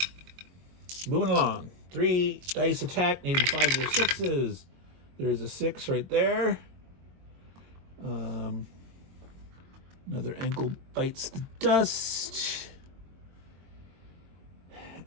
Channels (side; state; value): left; late; 22 ms